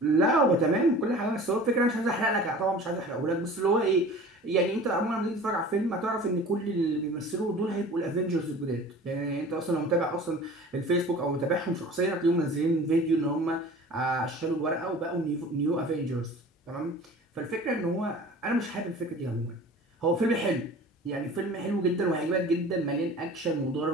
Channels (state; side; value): normal; both; correlation 0.42